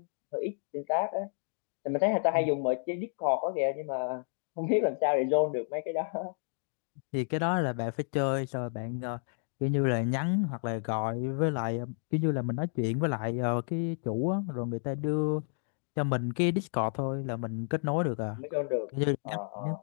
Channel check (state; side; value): silent; right; digital silence